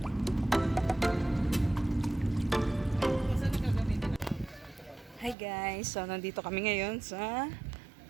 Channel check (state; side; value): drops out; left; at 5.4 s